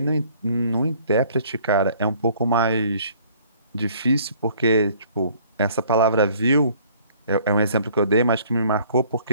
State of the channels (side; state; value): both; inverted; correlation -0.57